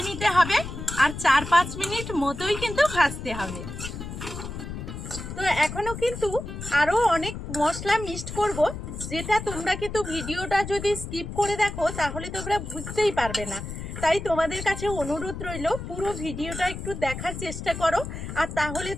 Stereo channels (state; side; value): noise; left; rumble, 8 dB below the sound